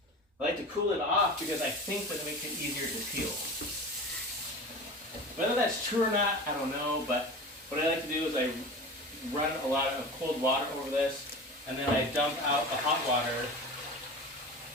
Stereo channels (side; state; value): both; normal; correlation 0.33